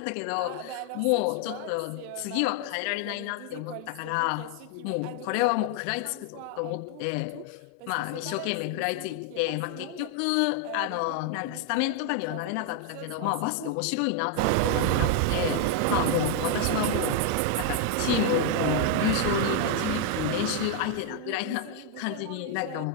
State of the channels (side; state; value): both; different; correlation 0.00